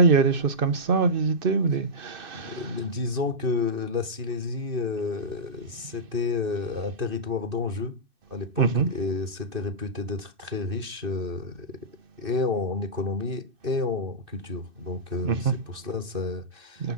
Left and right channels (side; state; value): left; late; 2.6 ms